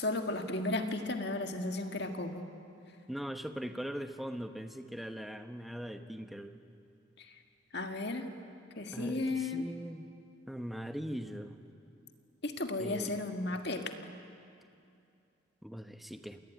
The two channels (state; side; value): normal; both; correlation 0.45